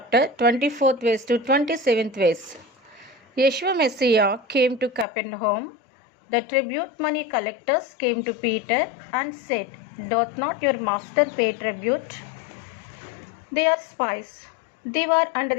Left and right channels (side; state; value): right; drops out; at 5.1 s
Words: 24th verse to 27th verse. Yeshua Messiah came to Capernaum. The tribute money collectors came to Peter and said, "Doth not your master pay tribute?" They are spies. They were